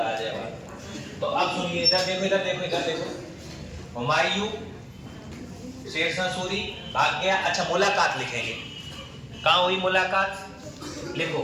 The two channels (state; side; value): identical; both; correlation 1.00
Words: आ जाएगा। तो अब सुनिए, इधर देखो, इधर देखो, इधर देखो। हुमायूं शेरशाह सूरी भाग गया। अच्छा, मुलाकात लिखेंगे। कहाँ हुई मुलाकात? लिखो,